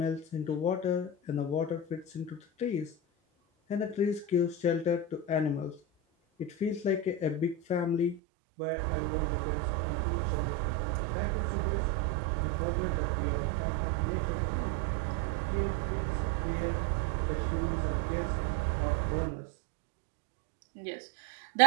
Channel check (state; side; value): drops out; left; at 8.2 s